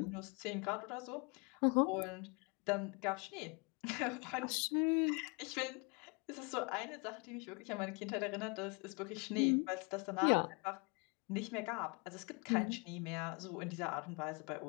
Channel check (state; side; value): quieter; right; 32.6 dB